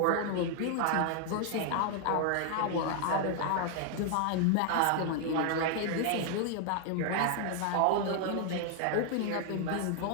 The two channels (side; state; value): both; different; correlation 0.00